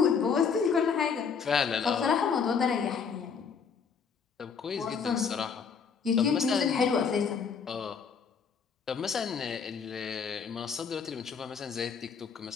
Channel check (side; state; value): right; quieter; 6.1 dB